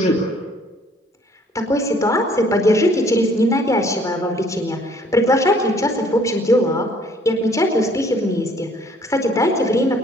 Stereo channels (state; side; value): normal; both; correlation 0.59